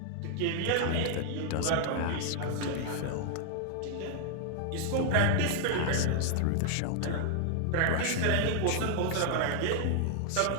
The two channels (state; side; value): different; both; correlation 0.00